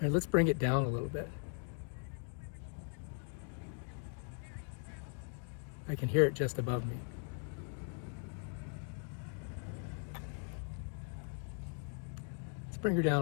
right, let's bring it down a little bit. I can hear it just above me. Let's bring her down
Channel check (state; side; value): silent; right; 52 dB below the other